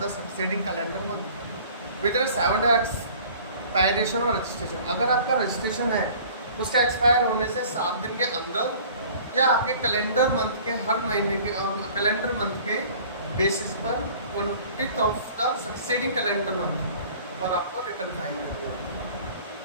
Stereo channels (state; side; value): inverted; both; correlation -0.48